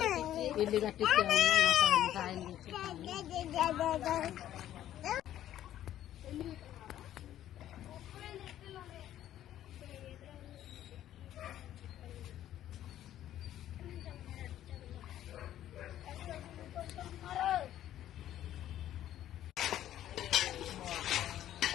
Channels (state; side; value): quieter; right; 12.2 dB